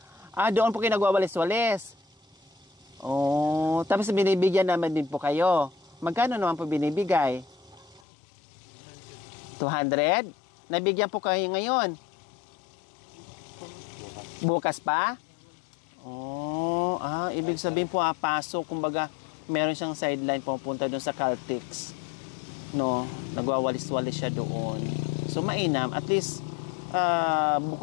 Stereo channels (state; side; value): drops out; right; at 8.0 s